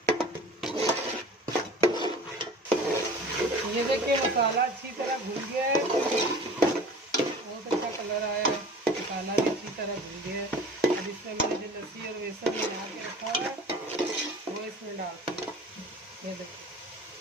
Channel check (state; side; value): normal; both; correlation 0.43